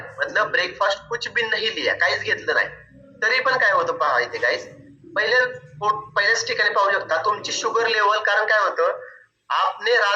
मतलब ब्रेकफास्ट कुछ भी नहीं लिया, काहीच घेतलं नाही, तरी पण काय होतं पहा इथे गाइस, पहिल्याच ठिकाणी पाहू शकता तुमची शुगर लेवल, कारण काय होतं, आपने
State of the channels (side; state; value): both; identical; correlation 1.00